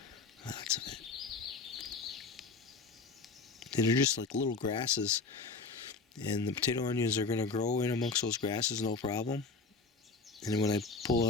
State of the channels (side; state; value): right; quieter; 4.2 dB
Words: Lots of it. And they're just like little grasses. And the potato onions are going to grow in amongst those grasses, no problem. And then when I